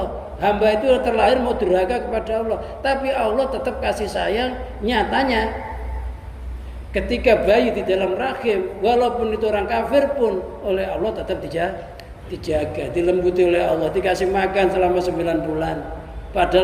hamba itu terlahir mau durhaka kepada Allah. Tapi Allah tetap kasih sayang. Nyatanya ketika bayi di dalam rahim, walaupun itu orang kafir pun oleh Allah tetap dijaga, dilembuti oleh Allah, dikasih makan selama 9 bulan.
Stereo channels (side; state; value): both; identical; correlation 1.00